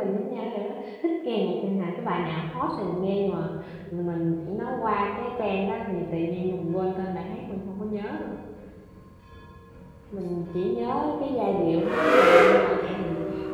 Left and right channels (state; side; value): identical; both; correlation 1.00